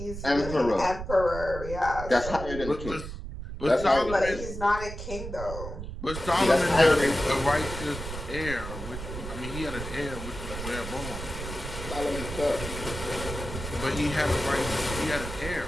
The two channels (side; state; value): right; noise; rumble, 8 dB below the sound